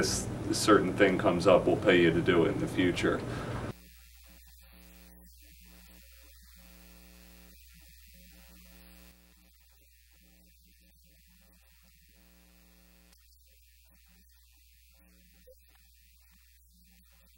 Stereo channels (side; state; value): both; identical; correlation 1.00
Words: certain thing comes up, we'll pay you to do it in the future.